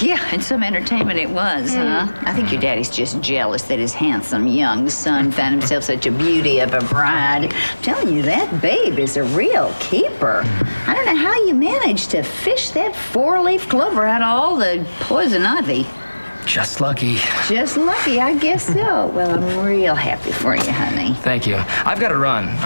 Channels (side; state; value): both; inverted; correlation -1.00